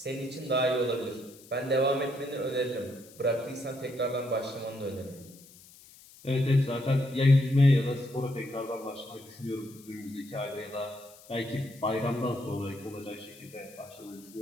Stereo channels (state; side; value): noise; left; hiss, 22 dB below the sound